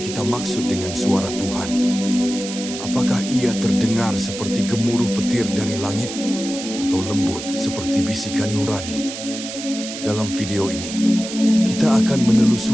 kita maksud dengan suara Tuhan? Apakah ia terdengar seperti gemuruh petir dari langit, atau lembut seperti bisikan nurani? Dalam video ini, kita akan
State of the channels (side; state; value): right; noise; hiss, 9 dB below the sound